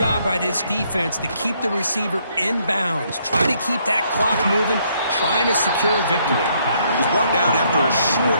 by this defense to keep the receiver in bounds. Try to keep that clock moving, trying to secure a victory. He's brought down after a short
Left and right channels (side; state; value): both; inverted; correlation -0.70